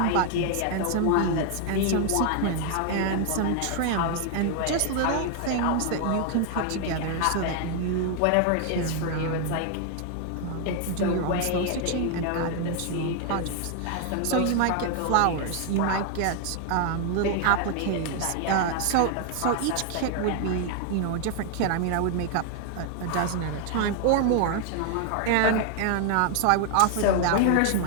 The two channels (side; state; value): both; different; correlation 0.00